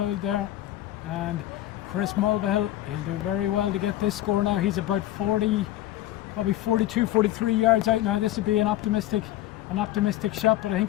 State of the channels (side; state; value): right; quieter; 14.3 dB